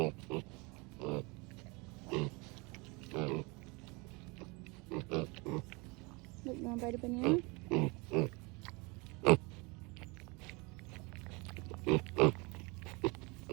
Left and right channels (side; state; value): left; quieter; 27.8 dB